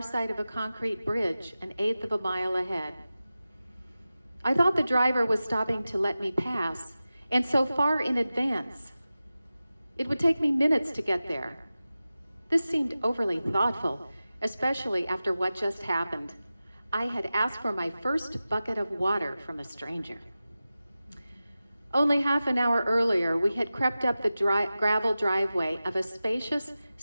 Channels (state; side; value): inverted; both; correlation -0.95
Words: of a concrete bridge, an eighth of a mile ahead. I thought the driver was stopping to let me pass, and so far in advance. It would take me minutes to get there. This seemed overly thoughtful, especially after what just happened. I had asked for my first bucket of water from a stranger. Only half an hour earlier, we had crept up the gravel driveway of a spacious,